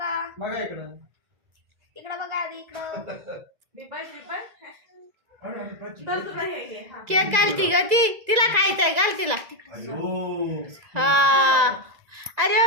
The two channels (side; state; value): left; late; 2.0 ms